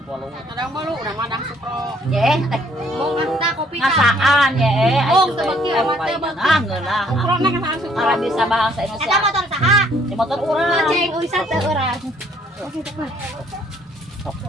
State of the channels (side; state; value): both; normal; correlation 0.63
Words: Kadang malu udah madang supro. Ye, Mong anta kopi ngasaan ye. Oh, sebeki mah teh Ah, ngeunah. Supro na kasaan supro. Ara bisa bahasa Eta Indonesia. motor saha? Di motor urang. Ceng ulisan teh urang.